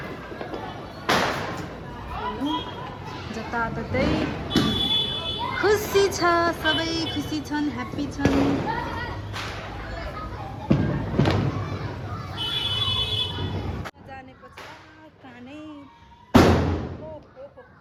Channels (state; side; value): identical; both; correlation 1.00